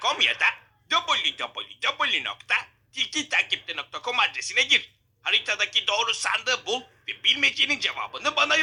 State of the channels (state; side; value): identical; both; correlation 1.00